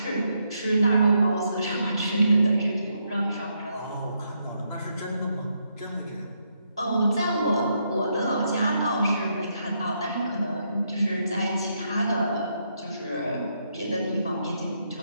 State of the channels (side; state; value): both; inverted; correlation -0.78